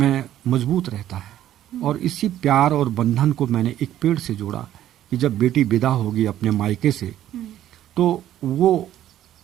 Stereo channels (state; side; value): quieter; left; 12.3 dB